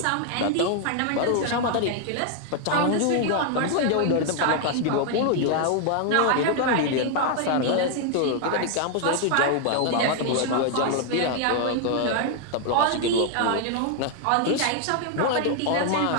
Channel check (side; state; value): both; different; correlation 0.00